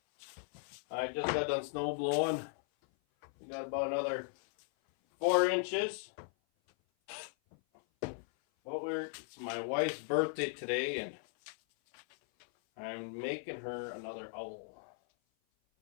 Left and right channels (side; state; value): right; silent; 53 dB below the other